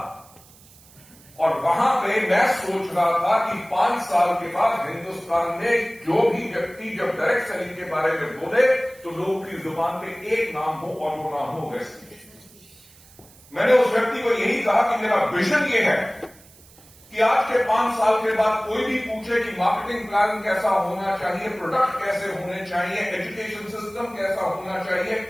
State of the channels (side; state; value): right; noise; hiss, 25 dB below the sound